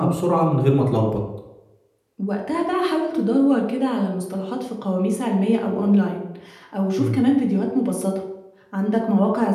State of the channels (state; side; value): identical; both; correlation 1.00